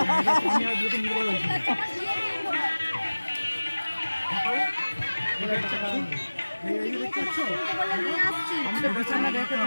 আমি আর বিয়েতে নির্ভর হয়েছি। এই যে দেখতে পাচ্ছ? আমি তো বেছে না দেখে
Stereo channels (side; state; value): both; inverted; correlation -1.00